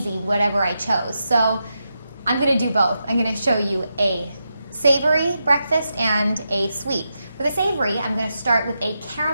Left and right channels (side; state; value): both; inverted; correlation -0.86